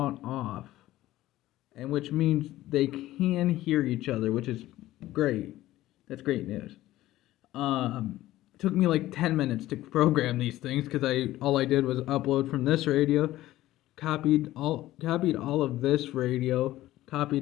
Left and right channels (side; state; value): right; quieter; 15.5 dB